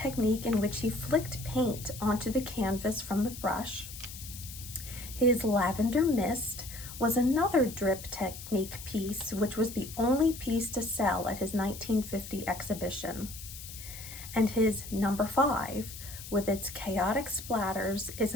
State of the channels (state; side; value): noise; left; hiss, 12 dB below the sound